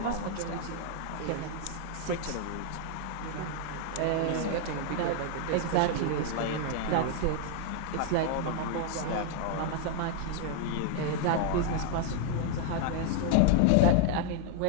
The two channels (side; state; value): both; different; correlation 0.00